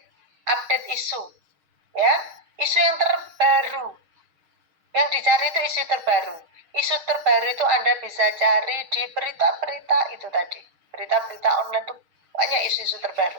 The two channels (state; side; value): late; left; 6.5 ms